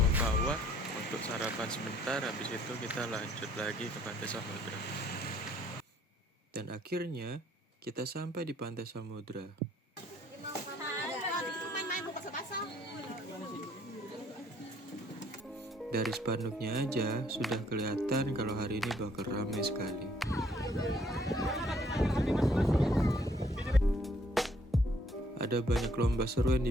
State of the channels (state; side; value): normal; both; correlation 0.64